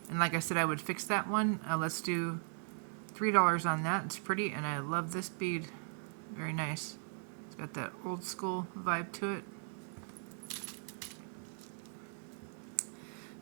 And like I said, I would fix that one. Let's do $3 on that. It's pretty, and I love this bead. Very nice. It's got that old school vibe to it.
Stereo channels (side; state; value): left; silent; 52 dB below the other